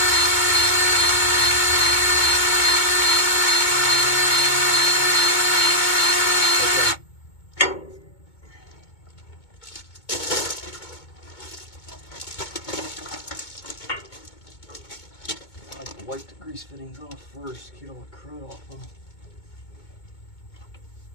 Wipe the grease fittings off first, get all the crud off them.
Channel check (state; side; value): late; right; 2.2 ms